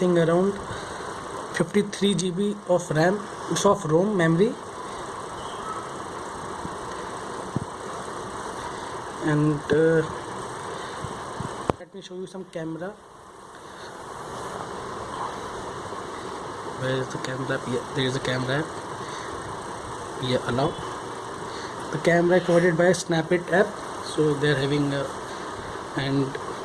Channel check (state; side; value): identical; both; correlation 1.00